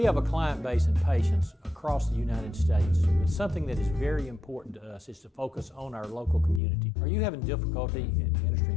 have a client base and patients across the United States, but something that is very important to us is to focus on our local community. Are you having difficulty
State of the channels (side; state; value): right; drops out; at 6.6 s